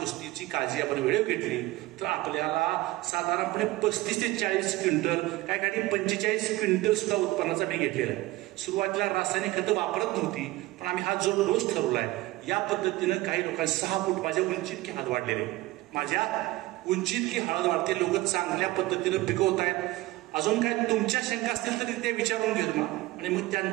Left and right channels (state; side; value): quieter; left; 18.7 dB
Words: काळजी आपण वेळेवर घेतली तर आपल्याला साधारणपणे 35 ते 40 क्विंटल, काय काही 45 क्विंटल सुद्धा उत्पन्नाचा मी घेतलेला आहे. सुरुवातीला रासायनिक खतं वापरत नव्हती, पण आम्ही हा जो डोस ठरवलाय या पद्धतीनं काही लोकांनी 6 फूट माझ्या उंची इतकी हळद वाढलेली, माझ्या उंची इतकी हळद वाढते, लोक चांगल्या पद्धतीनं पिकवत आहेत. अजून काय तुमच्या शंका असतील तरी ते विचारून घेतो मग, आणि मग